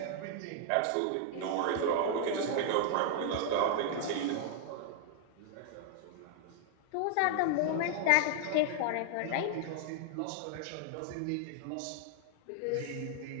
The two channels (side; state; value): both; different; correlation 0.00